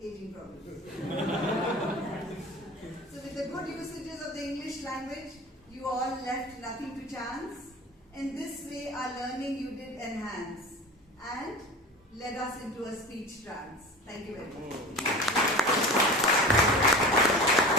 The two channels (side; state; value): both; normal; correlation 0.35